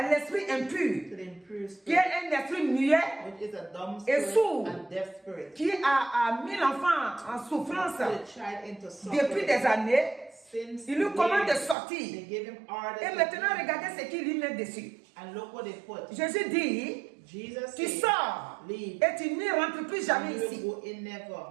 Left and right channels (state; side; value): drops out; left; at 11.8 s